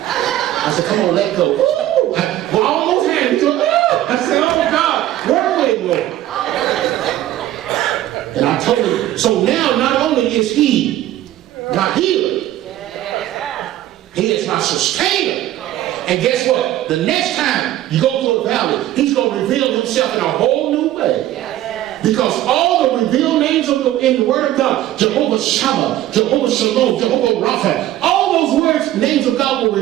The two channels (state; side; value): quieter; left; 13.7 dB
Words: I said, come on, let go. Ooh. Well, I almost had him. I said, oh God, where are we, Lord? And I told him, so now not only is he my healer, he is my sustainer. And guess what? The next time you go through a valley, he's going to reveal himself in a whole new way. Because all the revealed names in the Word of God, Jehovah Shammah, Jehovah Shalom, Jehovah Rapha, all those words, names of God were